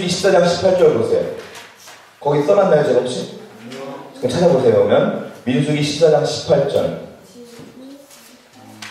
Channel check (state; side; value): identical; both; correlation 1.00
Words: 14장 18절 보세요. 거기 써놨나요 제가 혹시? 찾아보세요. 그러면 민수기 14장 18절.